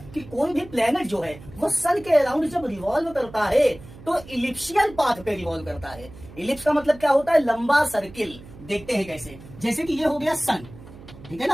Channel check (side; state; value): right; noise; hum, 18 dB below the sound